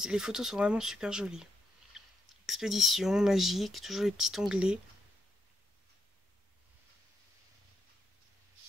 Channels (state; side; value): normal; both; correlation 0.80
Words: les photos sont vraiment super jolies. Expédition, magique, toujours les petits onglets.